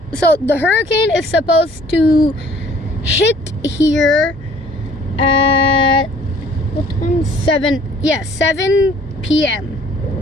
so the hurricane is supposed to hit here at, what time? 7 p.m.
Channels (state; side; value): normal; both; correlation 0.55